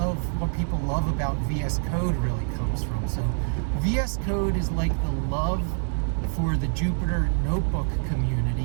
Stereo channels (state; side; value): silent; left; 61 dB below the other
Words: what people love about VS Code really comes from. So VS Code is like the love for the Jupyter Notebook